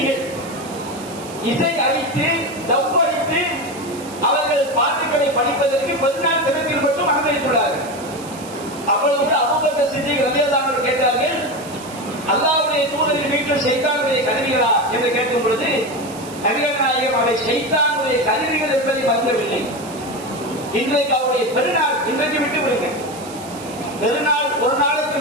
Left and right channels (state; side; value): noise; right; hiss, 16 dB below the sound